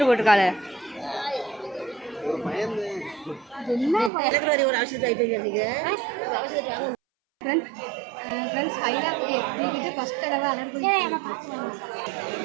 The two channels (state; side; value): drops out; left; at 4.1 s